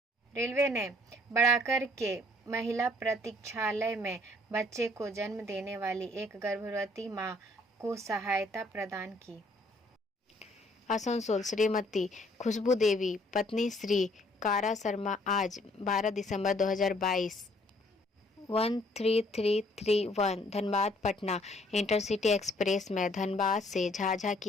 रेलवे ने बढ़ाकर के महिला प्रतीक्षालय में बच्चे को जन्म देने वाली एक गर्भवती मां को सहायता प्रदान की। आसनसोल श्रीमती खुशबू देवी पत्नी श्री कारा शर्मा आज 12 दिसंबर 2022 13331 धनबाद पटना इंटरसिटी एक्सप्रेस में धनबाद से झाझा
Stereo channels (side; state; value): both; normal; correlation 0.63